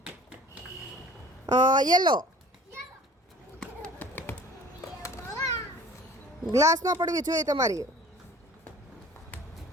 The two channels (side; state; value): both; normal; correlation 0.47